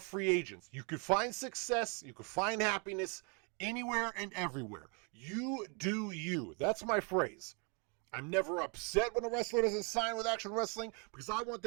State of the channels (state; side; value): quieter; left; 35.0 dB